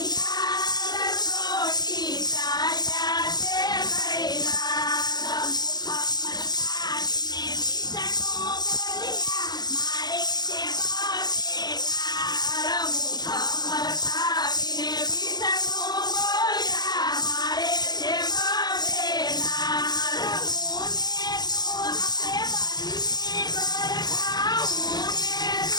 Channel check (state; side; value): late; right; 0.20 ms